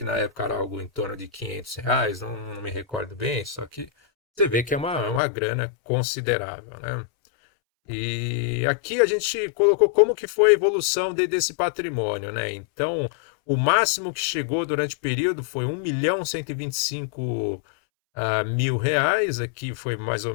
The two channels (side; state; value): right; drops out; at 5.2 s